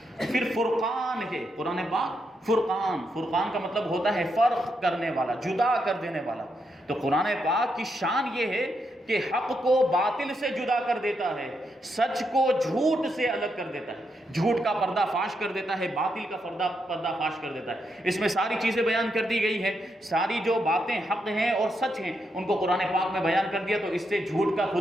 پھر فرقان ہے قرآن پاک، فرقان، فرقان کا مطلب ہوتا ہے فرق کرنے والا، جدا کر دینے والا۔ تو قرآن پاک کی شان یہ ہے کہ حق کو باطل سے جدا کر دیتا ہے، سچ کو جھوٹ سے الگ کر دیتا ہے، جھوٹ کا پردہ فاش کر دیتا ہے، باطل کا پردہ فاش کر دیتا ہے۔ اس میں ساری چیزیں بیان کر دی گئی ہیں، ساری جو باتیں حق ہیں اور سچ ہیں ان کو قرآن پاک میں بیان کر دیا، تو اس سے جھوٹ کا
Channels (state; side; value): normal; both; correlation 0.81